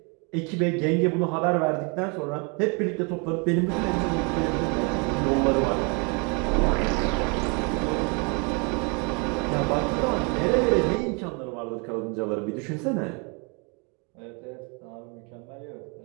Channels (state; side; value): quieter; left; 33.3 dB